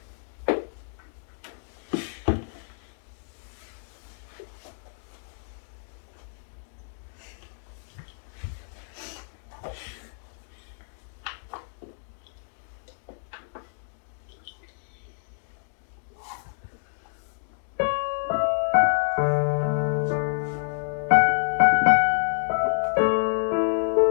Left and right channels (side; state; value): right; silent; digital silence